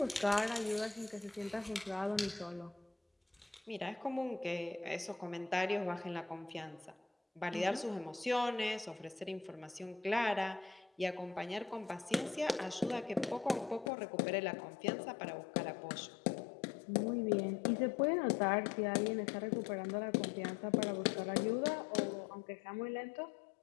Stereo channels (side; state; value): right; drops out; at 13.9 s